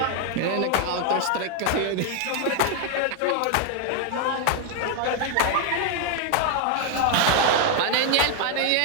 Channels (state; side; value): different; both; correlation 0.01